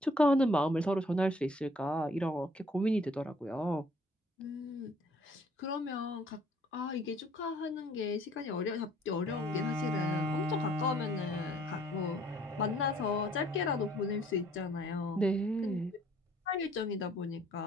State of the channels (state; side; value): normal; both; correlation 0.60